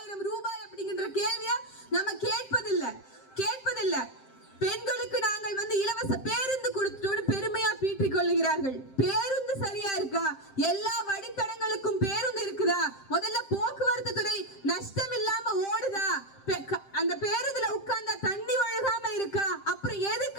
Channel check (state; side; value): late; right; 7.6 ms